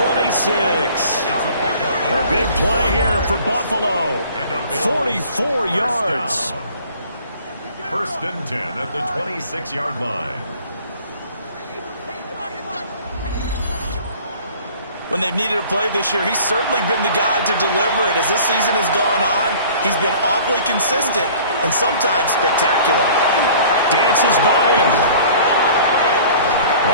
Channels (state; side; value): inverted; both; correlation -0.49